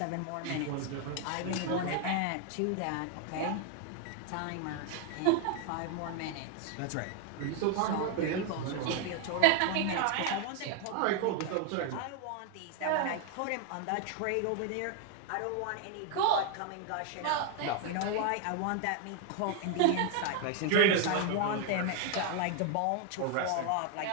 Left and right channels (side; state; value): both; different; correlation 0.00